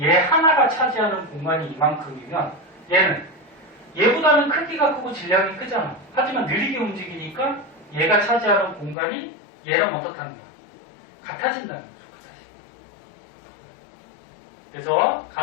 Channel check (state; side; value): drops out; right; at 9.0 s